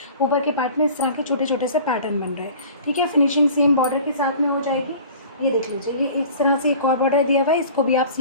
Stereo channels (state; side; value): inverted; both; correlation -0.43